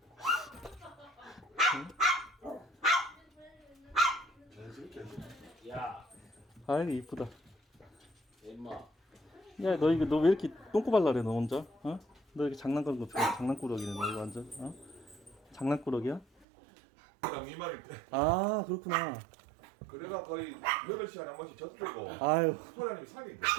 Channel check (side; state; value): left; drops out; at 16.4 s